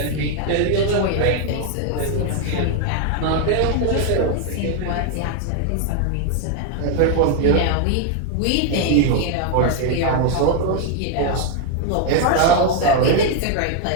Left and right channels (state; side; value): different; both; correlation 0.01